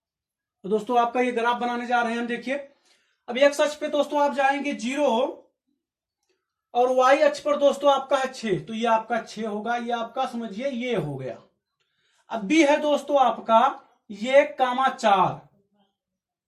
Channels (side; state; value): both; identical; correlation 1.00